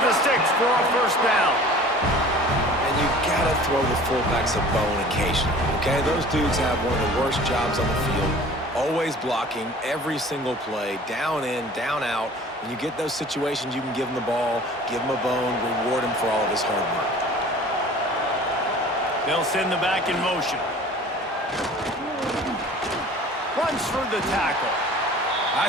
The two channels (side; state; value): both; normal; correlation 0.45